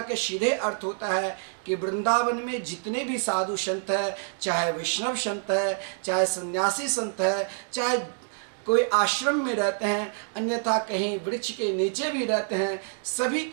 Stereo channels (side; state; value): left; silent; 57 dB below the other